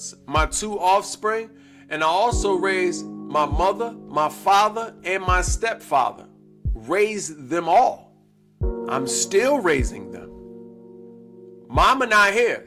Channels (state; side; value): identical; both; correlation 1.00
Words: my 2 offspring, and I also raised my mother, my father, and my stepfather. Raised them all. I'm still raising them. Mama not here,